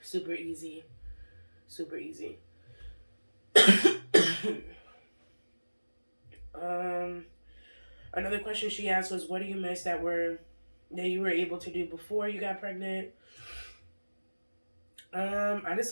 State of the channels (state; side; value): inverted; both; correlation -1.00